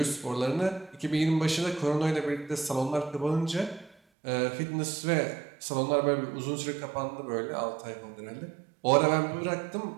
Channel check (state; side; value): drops out; left; at 4.0 s